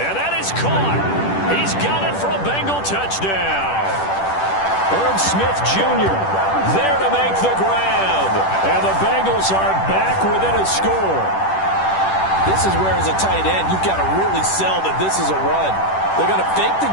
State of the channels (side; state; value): right; late; 10 ms